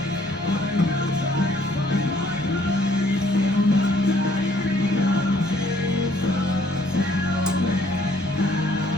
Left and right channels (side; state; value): left; noise; hum, 23 dB below the sound